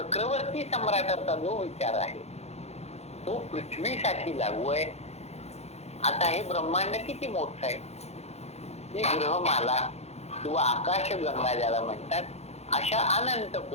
सम्राटाचा जो विचार आहे तो पृथ्वीसाठी लागू आहे. आता हे ब्रह्मांड किती मोठं आहे, ही ग्रहमाला किंवा आकाशगंगा ज्याला म्हणतात, अशा अनंत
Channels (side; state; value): right; late; 0.31 ms